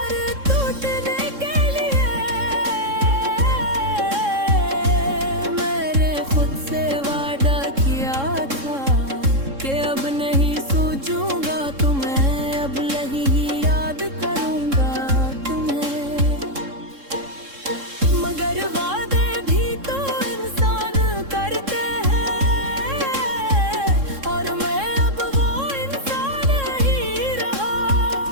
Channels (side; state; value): left; late; 3.7 ms